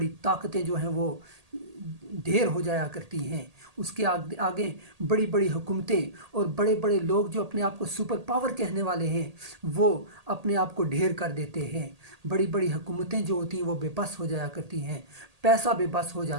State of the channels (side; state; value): left; late; 1.8 ms